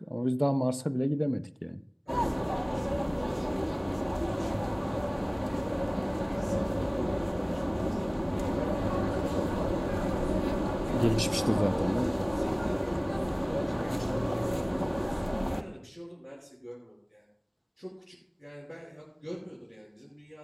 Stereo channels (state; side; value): identical; both; correlation 1.00